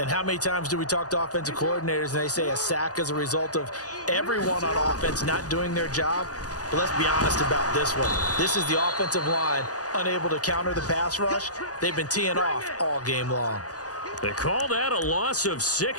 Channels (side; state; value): right; late; 0.67 ms